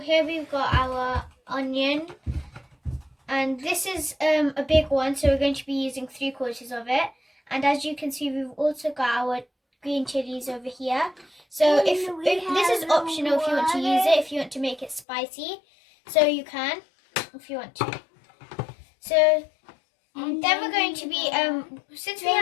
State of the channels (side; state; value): right; drops out; at 15.1 s